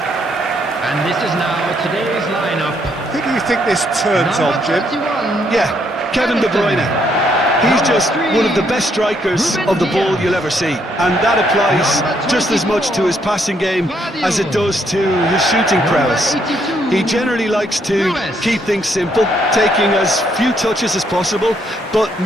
And this is now today's lineup. Who do you think this turns on, Jim? 31. Yeah, Kevin De Bruyne. He's just one of the best strikers of the ball you'll ever see, and that applies just as much to his passing game as it does to his shooting prowess. He generally likes to keep things simple, taking as few touches as possible, but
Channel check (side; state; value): both; normal; correlation 0.72